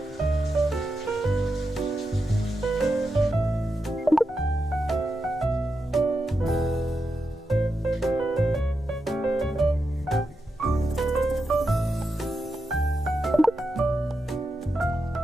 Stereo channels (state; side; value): normal; both; correlation 0.87